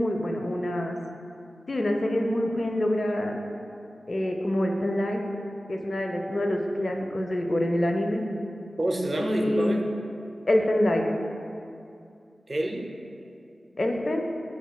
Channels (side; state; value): both; normal; correlation 0.96